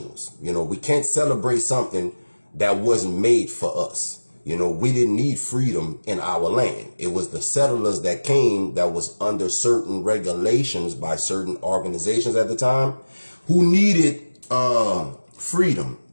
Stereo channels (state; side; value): inverted; both; correlation -1.00